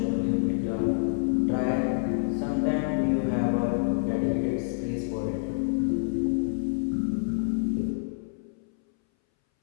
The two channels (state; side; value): silent; right; 60 dB below the other